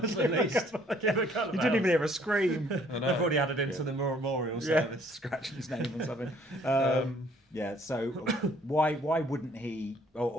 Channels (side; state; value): both; normal; correlation 0.61